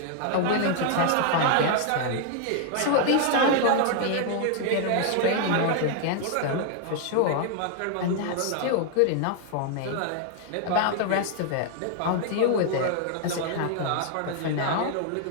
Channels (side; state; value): both; different; correlation 0.00